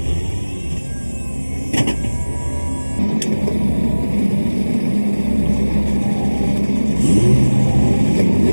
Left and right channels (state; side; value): inverted; both; correlation -1.00